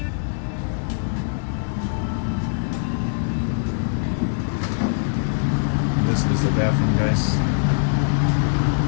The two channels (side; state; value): right; silent; digital silence